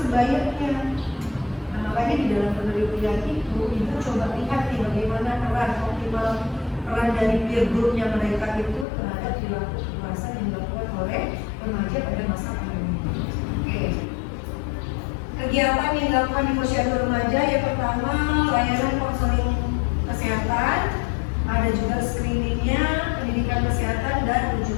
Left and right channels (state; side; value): drops out; right; at 8.8 s